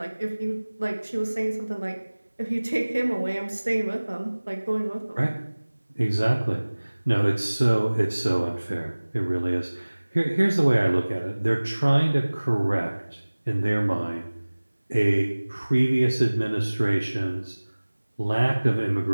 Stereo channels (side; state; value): both; inverted; correlation -1.00